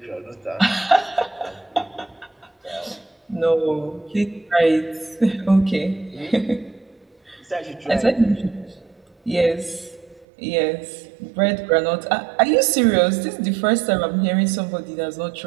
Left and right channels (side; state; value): left; drops out; at 10.2 s